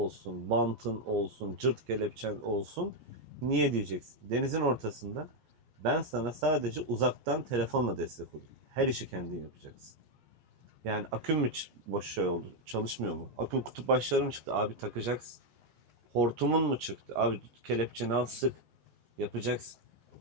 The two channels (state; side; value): late; left; 14 ms